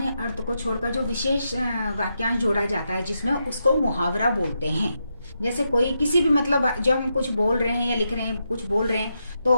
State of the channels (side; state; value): both; inverted; correlation -0.84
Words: अर्थ को छोड़कर जो विशेष वाक्यांश जोड़ा जाता है जिसमें उसको मुहावरा बोलते हैं। जैसे कोई किसी भी मतलब जब हम कुछ बोल रहे हैं या लिख रहे हैं, कुछ बोल रहे हैं तो